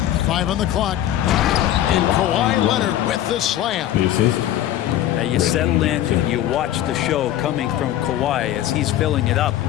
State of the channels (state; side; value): quieter; right; 12.5 dB